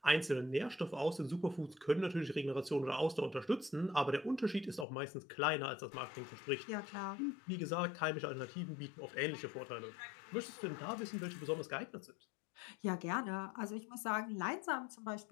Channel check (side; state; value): right; drops out; at 4.9 s